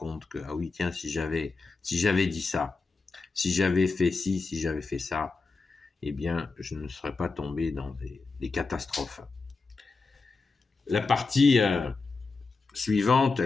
que, ah oui, tiens, si j'avais dit ça, si j'avais fait ci, si j'avais fait ça, eh bien, je ne serais pas tombé dans des catastrophes. La partie suivante,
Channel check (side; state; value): right; quieter; 4.1 dB